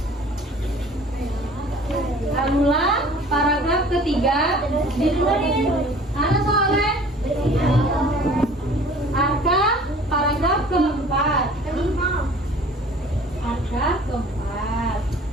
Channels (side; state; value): both; normal; correlation 0.48